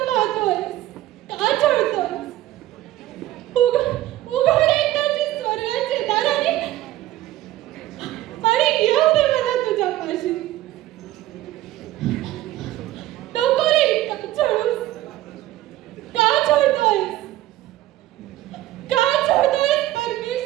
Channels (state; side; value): quieter; left; 15.2 dB